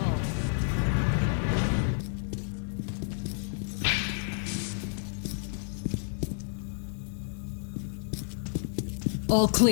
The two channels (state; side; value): silent; right; digital silence